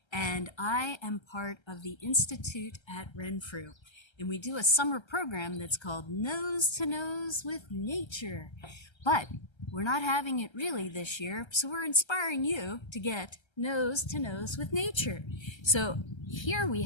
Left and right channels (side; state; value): right; late; 1.3 ms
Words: and I am part of the Institute at Renfrew. And we do a summer program that's called Nose to Nose with Nature. But we're not having it really this year, so we're inspiring you to get nose to nose with nature. So here we